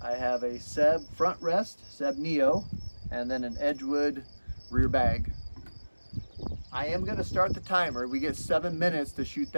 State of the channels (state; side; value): inverted; both; correlation -1.00